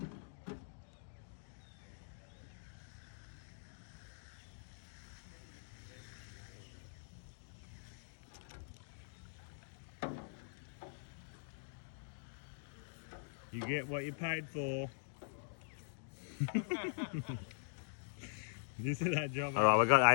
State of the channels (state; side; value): silent; right; digital silence